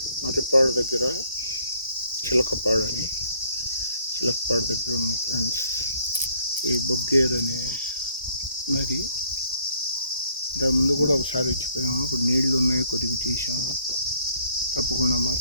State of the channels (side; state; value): both; inverted; correlation -0.64